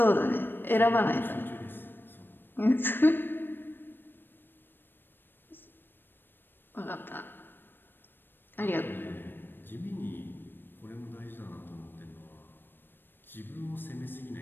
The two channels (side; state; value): right; late; 0.096 ms